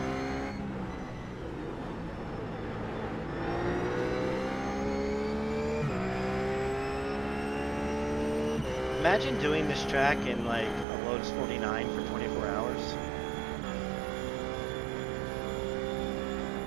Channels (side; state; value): left; drops out; at 10.9 s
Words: Imagine doing this track in like a Lotus 49 for 24 hours.